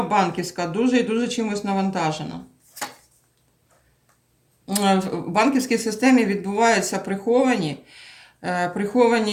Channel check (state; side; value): identical; both; correlation 1.00